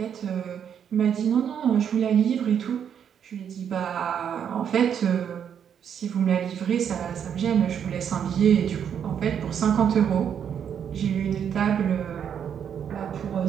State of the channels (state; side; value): quieter; left; 8.3 dB